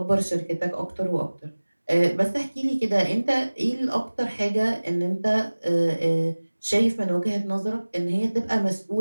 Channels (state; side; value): inverted; both; correlation -1.00